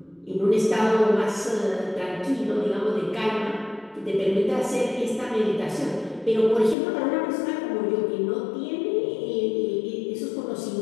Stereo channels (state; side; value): drops out; right; at 6.8 s